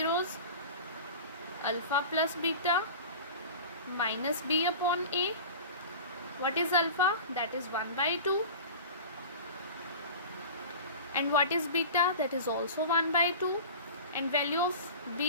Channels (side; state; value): both; inverted; correlation -0.35